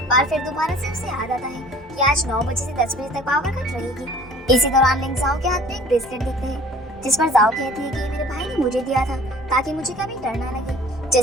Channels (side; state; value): both; normal; correlation 0.50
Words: और फिर दोबारा से उसे याद आता है कि आज 9 बजे से 10 बजे तक पावर कट रहेगी। इसी दौरान लिंक जाओ के हाथ में एक ब्रेसलेट देखते हैं, जिस पर जाओ कहती है कि मेरे भाई ने मुझे दिया था ताकि मुझे कभी डर ना लगे।